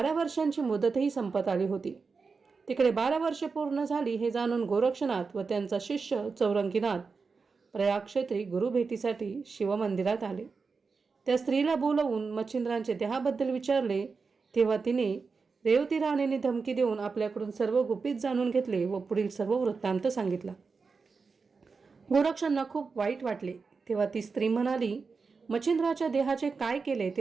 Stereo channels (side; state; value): left; quieter; 4.8 dB